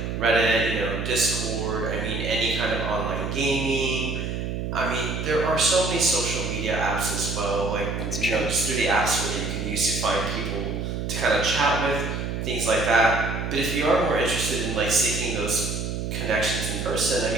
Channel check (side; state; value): right; noise; hum, 3 dB below the sound